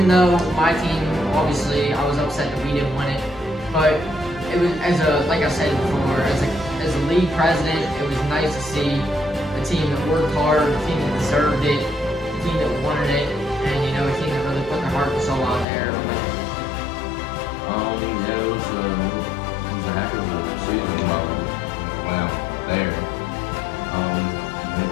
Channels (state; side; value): drops out; right; at 15.7 s